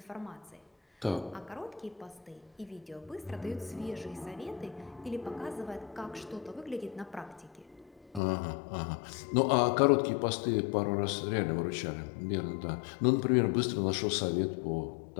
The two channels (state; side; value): drops out; right; at 8.2 s